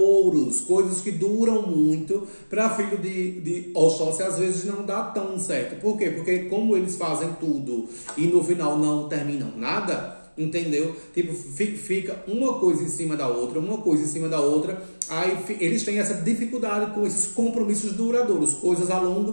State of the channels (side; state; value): both; inverted; correlation -1.00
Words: coisas que duram muito. Para filho de Oxóssi, às vezes não dá tão certo. Por quê? Porque como eles fazem tudo e no final não terminam nada, entendeu? Tipo, fica uma coisa em cima da outra, aí eles têm essa dificuldade com esses compromissos duradouros, coisas a longo